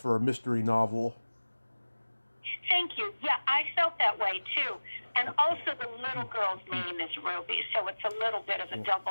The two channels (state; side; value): inverted; both; correlation -1.00